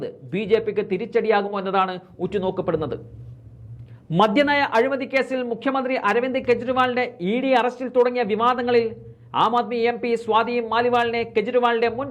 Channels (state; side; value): identical; both; correlation 1.00